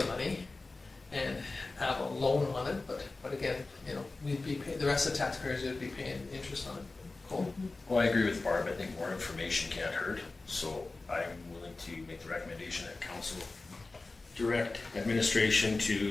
money and have a loan on it. But again, you know, we'd be the rest of the taxpayers would be paying interest on it. Cool. Well, I agree with Barb. I think more information can't hurt. So I'm willing to make the recommendation that council direct administration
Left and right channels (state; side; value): quieter; right; 3.4 dB